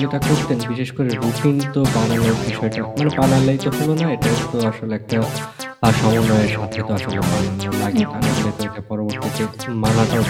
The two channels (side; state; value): both; identical; correlation 1.00